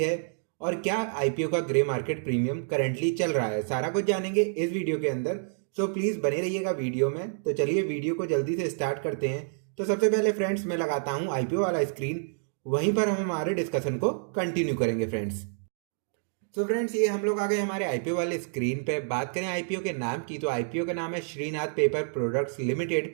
और क्या आईपीओ का ग्रे मार्केट प्रीमियम करंटली चल रहा है। सारा कुछ जानेंगे इस वीडियो के अंदर। सो प्लीज बने रहिएगा वीडियो में। तो चलिए वीडियो को जल्दी से स्टार्ट करते हैं। तो सबसे पहले फ्रेंड्स मैं लगाता हूँ आईपीओ वाला स्क्रीन, वहीं पर हम हमारे डिस्कशन को कंटिन्यू करेंगे फ्रेंड्स। तो फ्रेंड्स, ये हम लोग आ गए हमारे आईपीओ वाले स्क्रीन पे। बात करें आईपीओ के नाम की, तो आईपीओ का नाम है श्रीनाथ पेपर प्रोडक्ट्स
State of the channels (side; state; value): left; silent; digital silence